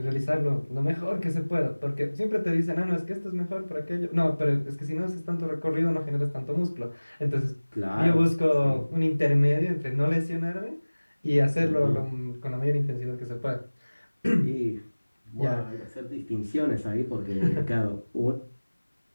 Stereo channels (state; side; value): inverted; both; correlation -1.00